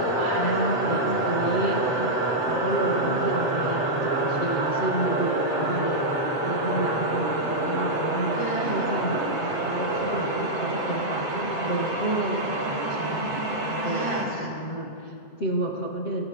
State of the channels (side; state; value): right; late; 7.3 ms